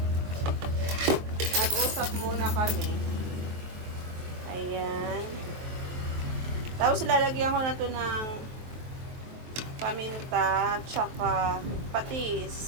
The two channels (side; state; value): left; late; 23 ms